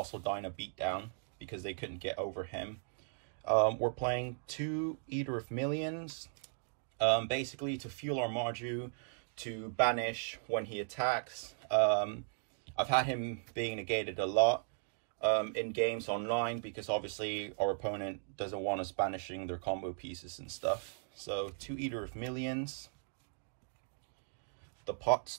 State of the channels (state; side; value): silent; left; digital silence